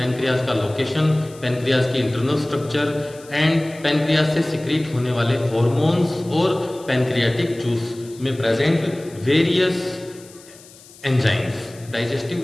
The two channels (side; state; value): left; noise; hiss, 22 dB below the sound